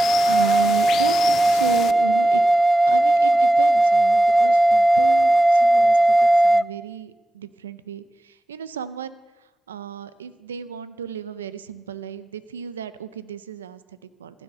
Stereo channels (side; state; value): both; normal; correlation 0.93